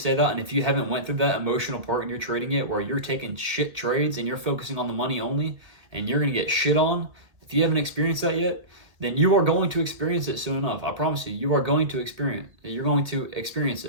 that. And if you haven't went through that emotional part and you're trading it where you're taking shit trades and you're focusing on the money only and you're going to get shit on, if you haven't experienced that yet, then you are going to experience it soon enough. I promise you, you're going to experience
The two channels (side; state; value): left; late; 1.8 ms